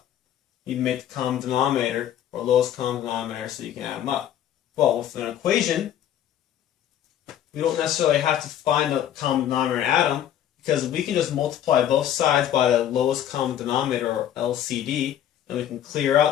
You need to make the common denominator or lowest common denominator so you can add them up. Well, with an equation, we don't necessarily have to find the common denominator and add them, because we can just multiply both sides by the lowest common denominator, or LCD, and we can clear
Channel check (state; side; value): quieter; right; 10.8 dB